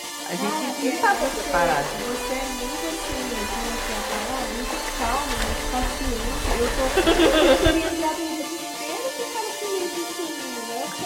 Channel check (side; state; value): both; identical; correlation 1.00